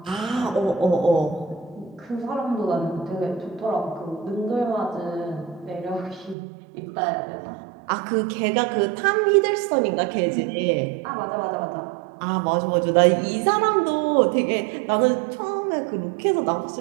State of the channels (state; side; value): drops out; left; at 6.4 s